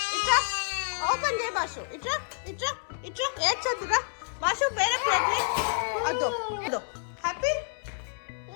ఇట్రా ఓపెన్ చేయ బాషు. ఇట్రా ఇట్రా ఇట్రా. ఏడ్చొద్దురా బాషు, వేరే ప్లేట్. అదో అదో. Happy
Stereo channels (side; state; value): right; silent; 59 dB below the other